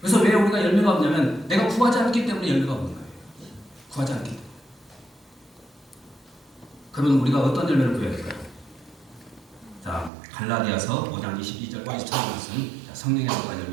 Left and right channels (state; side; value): drops out; left; at 10.1 s